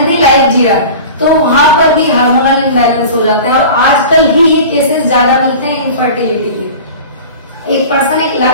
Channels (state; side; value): inverted; both; correlation -0.37